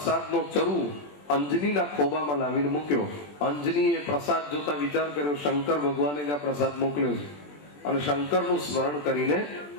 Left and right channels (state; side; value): late; right; 20 ms